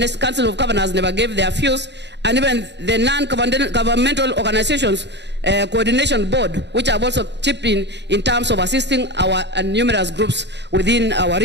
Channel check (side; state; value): left; late; 0.51 ms